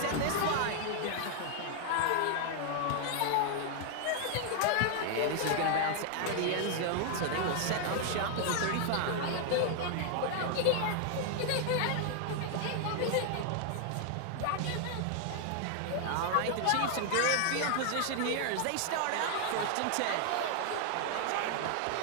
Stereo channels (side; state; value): both; different; correlation 0.00